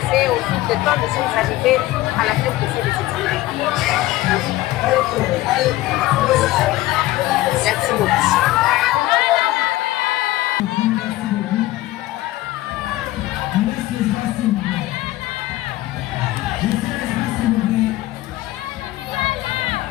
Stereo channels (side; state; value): right; quieter; 16.9 dB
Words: au fil du temps, nous sommes arrivés à la fin de ces examens. Merci beaucoup.